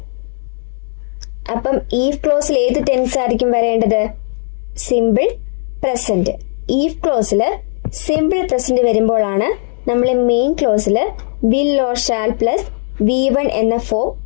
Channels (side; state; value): right; silent; digital silence